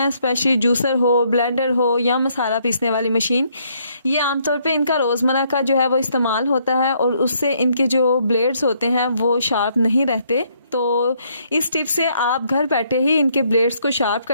स्पेशली जूसर हो, ब्लेंडर हो या मसाला पीसने वाली मशीन, ये आमतौर पे इनका रोज़मर्रा का जो है वो इस्तेमाल होता है और उससे इनके जो ब्लेड्स होते हैं वो शार्प नहीं रहते। तो इस टिप से आप घर बैठे ही इनके ब्लेड्स को शार्प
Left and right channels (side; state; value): both; inverted; correlation -0.70